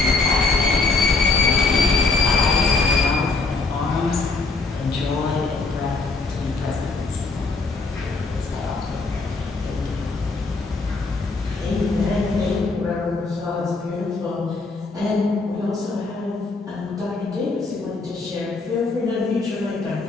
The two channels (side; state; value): right; quieter; 3.9 dB